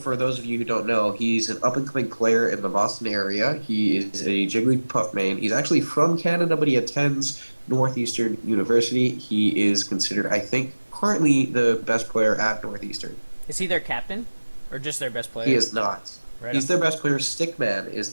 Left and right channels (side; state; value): both; inverted; correlation -1.00